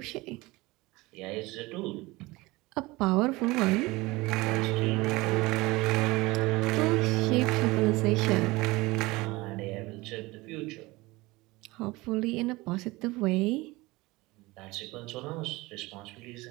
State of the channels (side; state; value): left; quieter; 21.6 dB